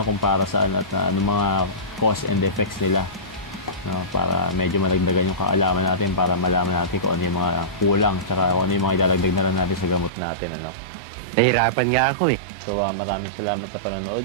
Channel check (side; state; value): left; drops out; at 10.1 s